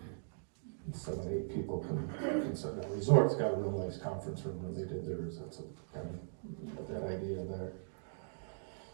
and 7, 8 people can sit down. Resort's got a real nice conference room when they did theirs. That's kind of that idea there.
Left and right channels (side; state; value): left; silent; digital silence